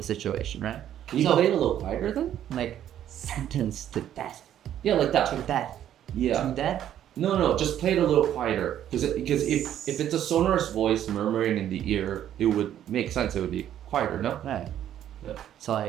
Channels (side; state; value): left; quieter; 10.9 dB